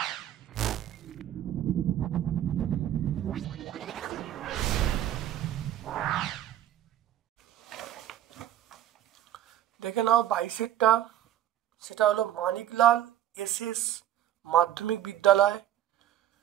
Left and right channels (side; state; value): left; quieter; 12.0 dB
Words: নাও 22-এরটা, সেটা হলো মানিকলাল এসএস মাধ্যমিক বিদ্যালয়,